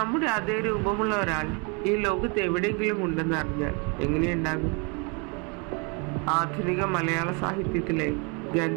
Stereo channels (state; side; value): quieter; left; 33.3 dB